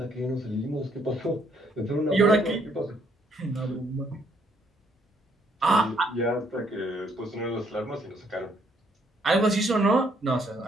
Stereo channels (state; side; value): normal; both; correlation 0.69